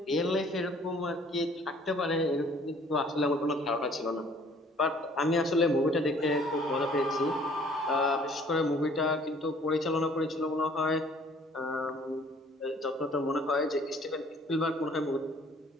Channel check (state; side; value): normal; both; correlation 0.56